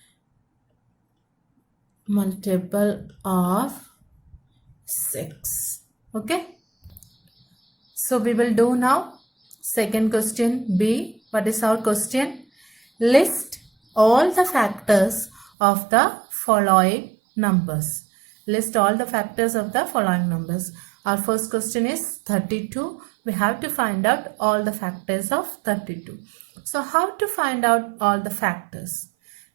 multiple of 6. Okay. So we will do now second question B. What is our question? List all the factors of the following numbers. List all the factors of the following numbers. Our first question is 32. We have to find out all the factors of 32. So how to find out all the factors?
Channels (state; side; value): drops out; left; at 15.5 s